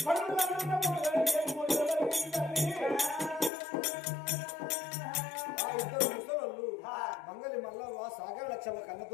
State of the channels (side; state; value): right; drops out; at 3.5 s